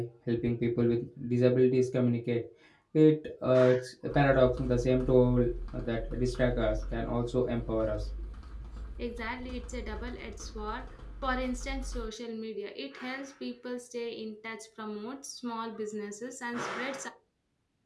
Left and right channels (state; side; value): identical; both; correlation 1.00